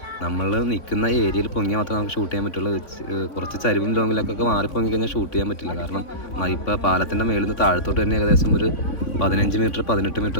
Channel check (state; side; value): late; right; 3.5 ms